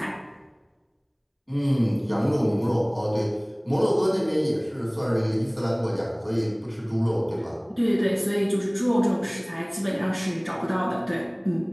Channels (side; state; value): both; identical; correlation 1.00